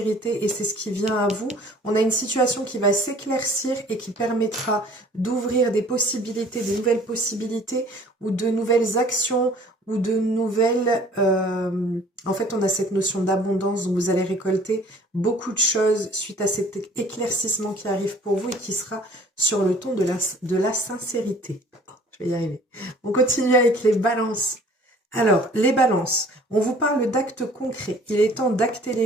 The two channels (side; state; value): both; normal; correlation 0.52